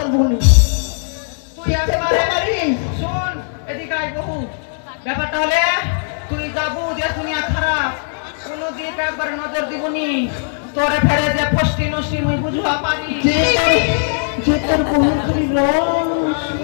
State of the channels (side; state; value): right; silent; digital silence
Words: নি তুই একবারে শুন এদিকে আই বহু ব্যাপারটা হলে তুই যাবু যে দুনিয়া খারাপ কোন দিক একবার নজর দিবনি তোরে ফেরে যে ফষ্টি নষ্টি মুই বুঝবা পারি যে তোর বহুর খালি রস